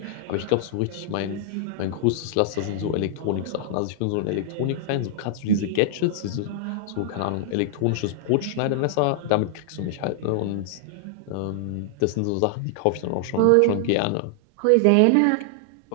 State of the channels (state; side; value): different; both; correlation -0.01